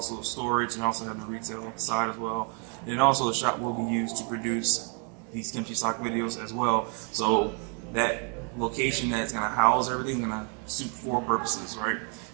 storage, and also have the retail side as well. And also the shop will be used to produce these Kimchi Sock videos as well. So that location that's gonna house everything gonna suit four purposes, right?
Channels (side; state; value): left; quieter; 39.2 dB